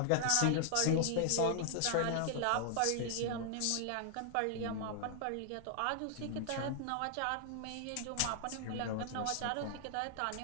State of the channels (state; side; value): different; both; correlation -0.01